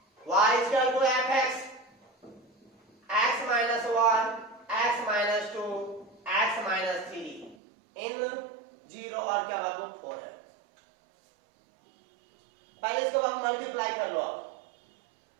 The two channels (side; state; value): left; drops out; at 7.6 s